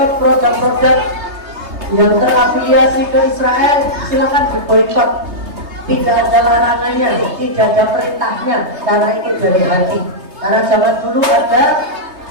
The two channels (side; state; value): left; late; 3.3 ms